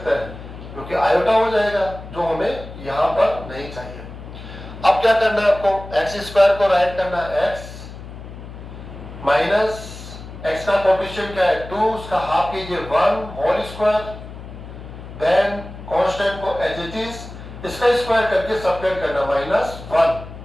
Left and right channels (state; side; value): noise; left; hum, 13 dB below the sound